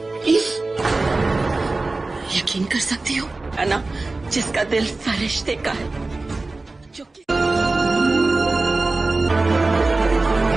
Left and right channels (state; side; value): quieter; left; 3.3 dB